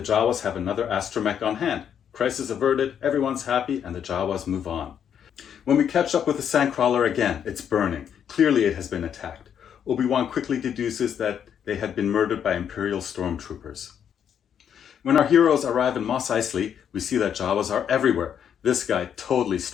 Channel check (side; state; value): right; quieter; 8.6 dB